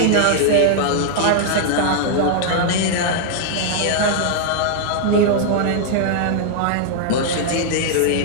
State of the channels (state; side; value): different; both; correlation -0.01